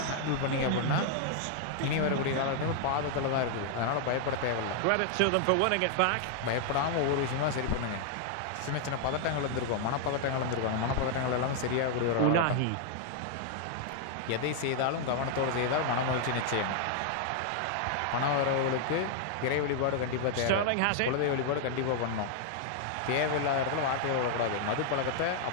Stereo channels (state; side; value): different; both; correlation 0.00